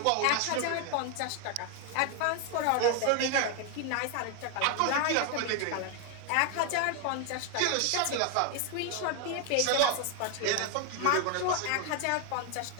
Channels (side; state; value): both; different; correlation 0.01